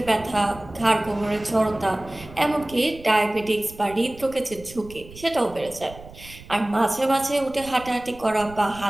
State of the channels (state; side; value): noise; right; rumble, 18 dB below the sound